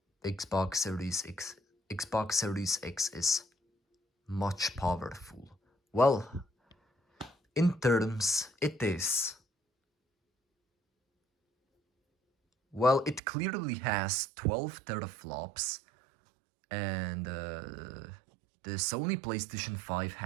Xbox Series X is much powerful. Well, in terms, it is. Well, it clearly has 12 teraflops, and the Sony PlayStation 5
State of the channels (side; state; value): left; drops out; at 13.2 s